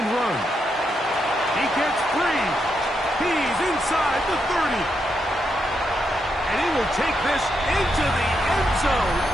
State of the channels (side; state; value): both; normal; correlation 0.82